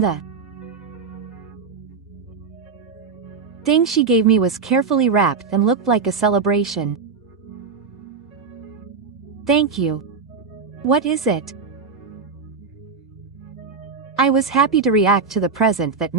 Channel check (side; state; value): left; quieter; 5.1 dB